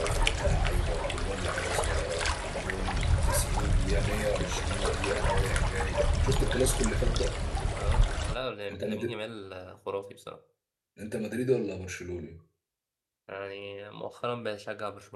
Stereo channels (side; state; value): both; identical; correlation 1.00